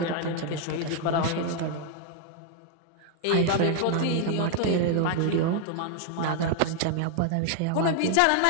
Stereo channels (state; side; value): different; both; correlation 0.00